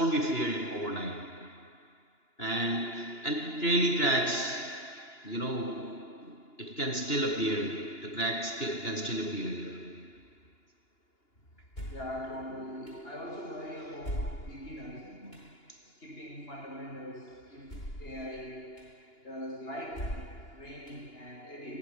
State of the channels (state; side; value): late; right; 2.9 ms